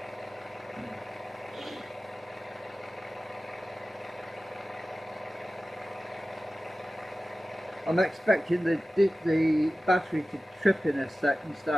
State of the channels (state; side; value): normal; both; correlation 0.95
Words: I'm expecting the battery to trip in a sec and